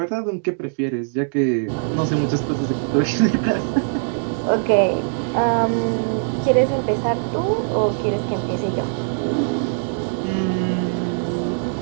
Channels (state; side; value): silent; left; digital silence